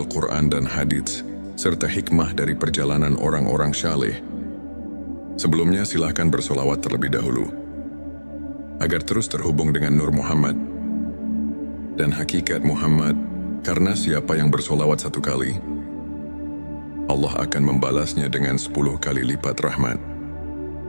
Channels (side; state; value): both; inverted; correlation -1.00